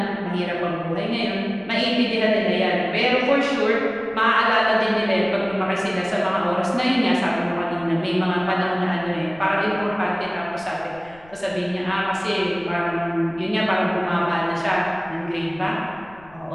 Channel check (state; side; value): noise; left; rumble, 26 dB below the sound